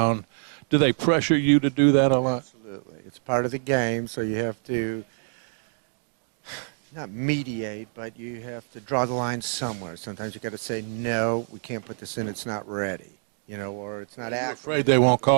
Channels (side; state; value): left; silent; digital silence